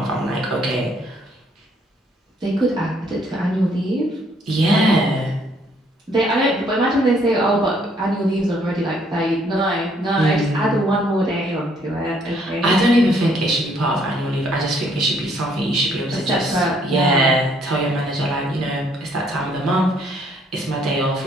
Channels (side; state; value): both; normal; correlation 0.66